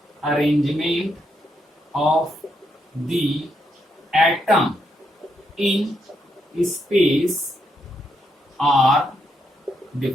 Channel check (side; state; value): both; normal; correlation 0.79